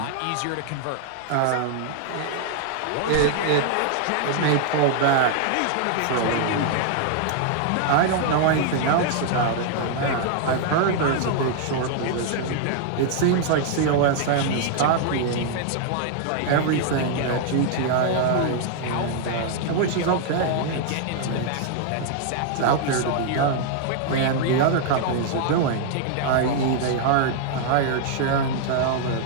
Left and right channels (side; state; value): both; different; correlation 0.00